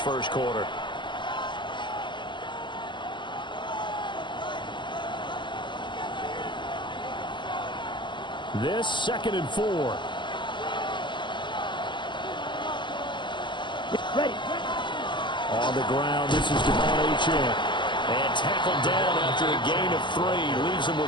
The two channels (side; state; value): right; late; 0.22 ms